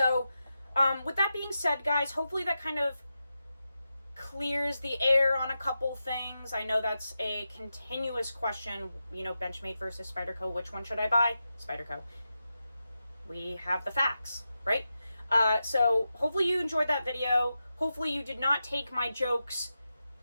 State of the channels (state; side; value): inverted; both; correlation -0.90